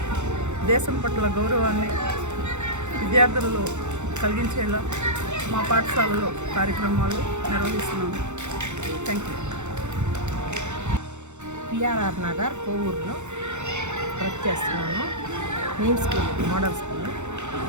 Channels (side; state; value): left; late; 0.83 ms